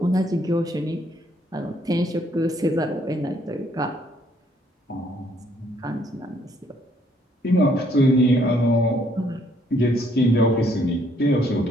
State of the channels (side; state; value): both; normal; correlation 0.67